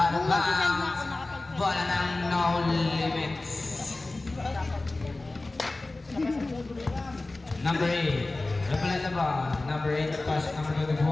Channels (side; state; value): right; quieter; 3.0 dB